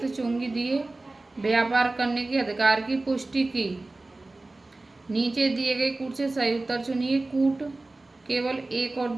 चुंगी दिए व्यापार करने के अधिकार की पुष्टि की। नीचे दिए गए कूट से सही उत्तर चुनिए। कूट केवल 1 और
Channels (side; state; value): left; quieter; 3.1 dB